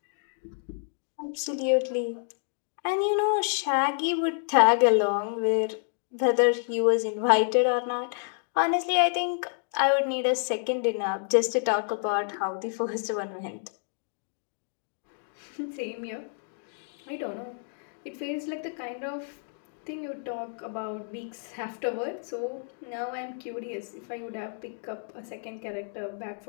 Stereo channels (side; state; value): right; silent; digital silence